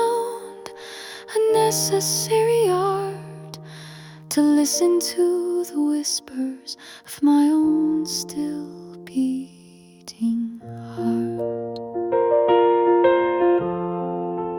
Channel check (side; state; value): both; identical; correlation 1.00